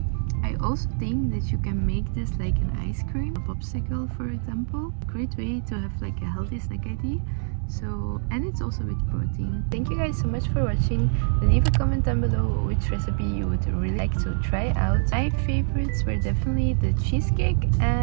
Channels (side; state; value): left; silent; 62 dB below the other